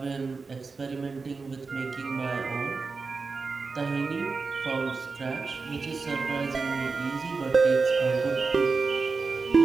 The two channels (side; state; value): left; quieter; 4.4 dB